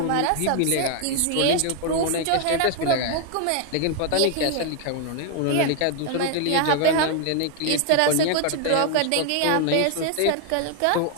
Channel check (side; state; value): both; different; correlation 0.00